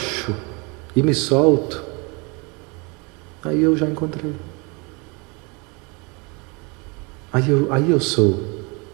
e me solto, aí eu já encontrei. Aí eu sou.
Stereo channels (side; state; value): left; quieter; 29.8 dB